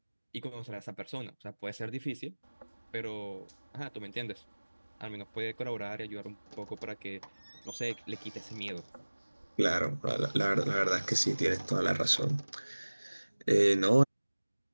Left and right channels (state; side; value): inverted; both; correlation -1.00